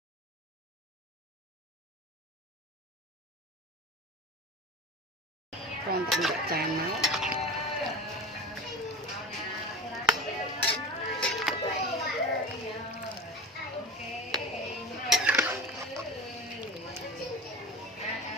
con tạm được tràn máu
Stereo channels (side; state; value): both; normal; correlation 0.32